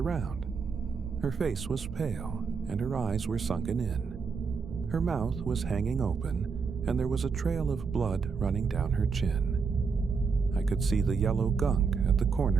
Her face was pale, and her eyes were sunken in. Her mouth was hanging open, and there was a trail of blood running down her chin. I could see the yellow gunk at the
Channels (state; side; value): quieter; left; 5.3 dB